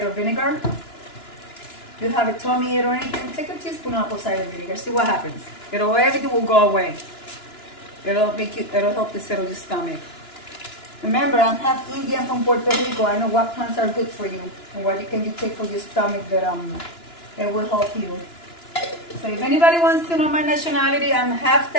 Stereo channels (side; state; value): right; late; 2.9 ms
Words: vinegar. If you have a tummy ache or anything, take a teaspoon of apple cider vinegar. See what happens. Everything will go away. It'll help to settle your stomach. Remember, I'm half Indian from Puerto Rico. I know what plants are good for you and what can you take for your stomach that it will help you. So if anybody wants to know my nationality, I'm half